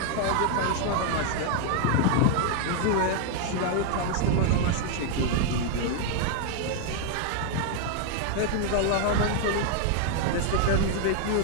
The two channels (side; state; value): both; different; correlation 0.00